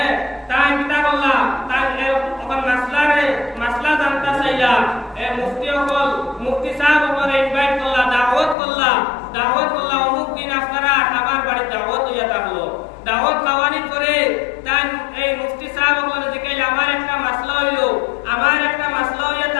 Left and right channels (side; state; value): right; drops out; at 8.6 s